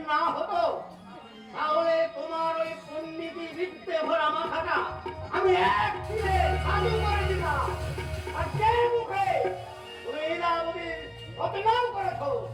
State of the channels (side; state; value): both; identical; correlation 1.00